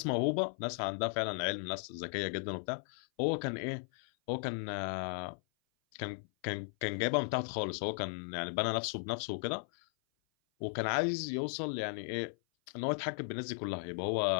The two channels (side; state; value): right; silent; 54 dB below the other